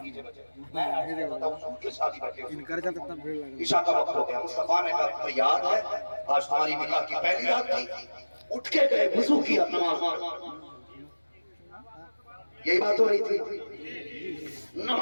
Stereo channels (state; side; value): inverted; both; correlation -1.00